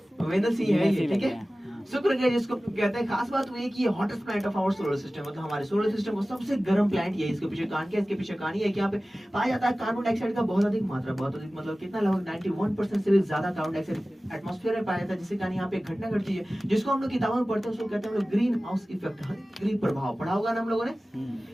वेनस ही है ये, ठीक है। शुक्र ग्रह जिसको कहते हैं। खास बात वो ये कि ये hottest planet of our solar system, मतलब हमारे सोलर सिस्टम का सबसे गर्म प्लैनेट ये है। इसके पीछे कारण क्या है? इसके पीछे कहानी है कि यहाँ पे पाया जाता है कार्बन डाइऑक्साइड का बहुत अधिक मात्रा, बहुत अधिक मतलब कितना, लगभग 91% से भी ज्यादा कार्बन डाइऑक्साइड एटमॉस्फेयर में पाया जाता है, जिससे कारण यहाँ पे एक घटना घटती है जिसको हम लोग किताबों में पढ़ते हैं, उसको कहते हैं हम लोग ग्रीन हाउस इफेक्ट, ग्रीन प्रभाव। पढ़ा होगा ना हम लोगों ने?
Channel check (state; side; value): normal; both; correlation 0.97